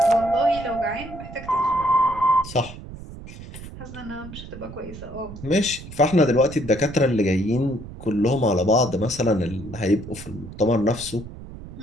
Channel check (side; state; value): right; noise; rumble, 14 dB below the sound